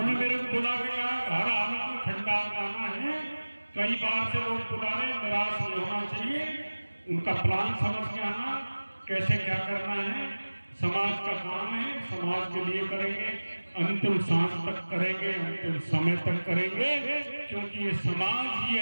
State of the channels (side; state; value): both; inverted; correlation -1.00